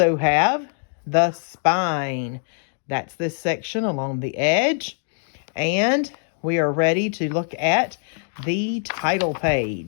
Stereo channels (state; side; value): silent; right; digital silence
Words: have the spine. That's this section along the edge. And we are ready to look at the title